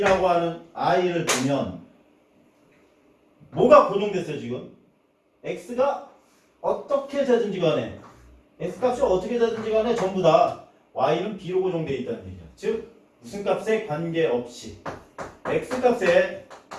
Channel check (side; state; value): both; identical; correlation 1.00